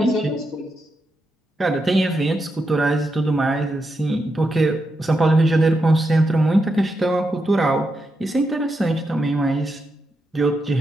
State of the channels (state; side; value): normal; both; correlation 0.85